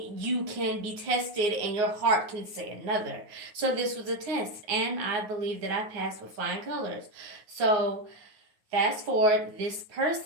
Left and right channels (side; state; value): left; late; 9.5 ms